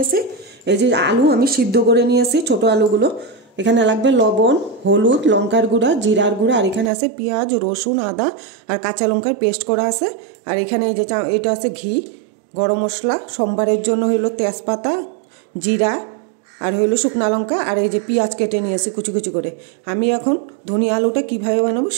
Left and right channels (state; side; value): drops out; left; at 6.9 s